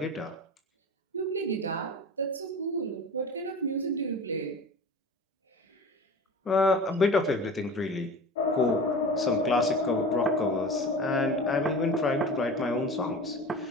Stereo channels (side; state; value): both; normal; correlation 0.35